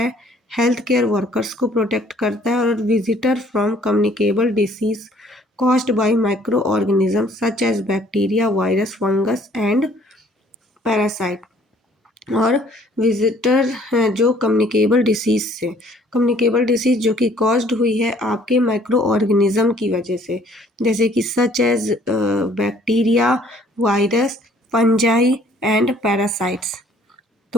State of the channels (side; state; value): both; normal; correlation 0.59